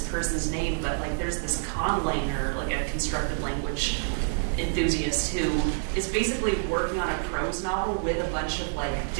person's name, but like there's this conlanger, like a constructed language enthusiast who is basically working on a prose novel with a bunch of like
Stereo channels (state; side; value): silent; left; 60 dB below the other